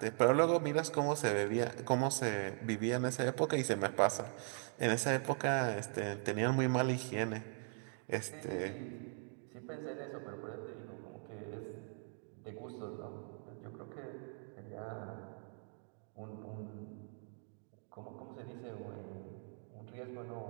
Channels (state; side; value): silent; left; 51 dB below the other